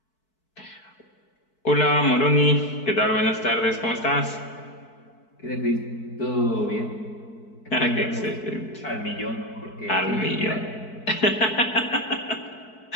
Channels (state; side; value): late; right; 4.6 ms